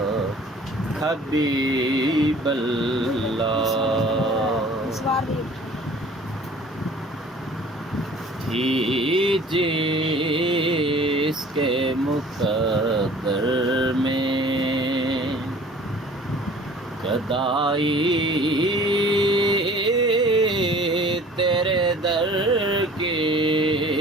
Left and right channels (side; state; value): both; normal; correlation 0.49